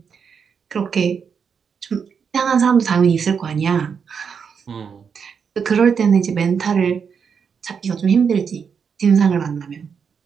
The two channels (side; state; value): left; quieter; 6.5 dB